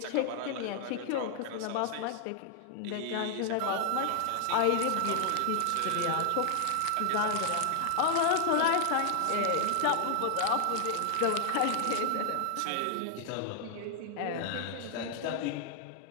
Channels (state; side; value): different; both; correlation 0.00